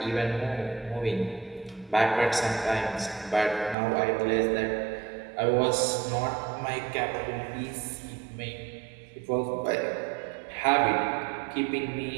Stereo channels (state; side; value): drops out; left; at 3.8 s